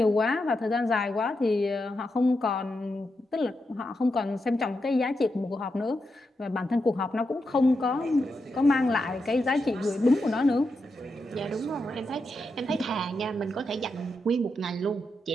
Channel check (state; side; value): normal; both; correlation 0.86